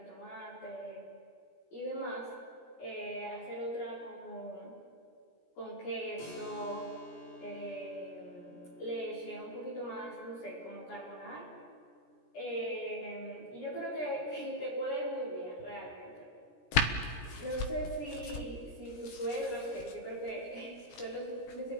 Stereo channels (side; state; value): right; late; 17 ms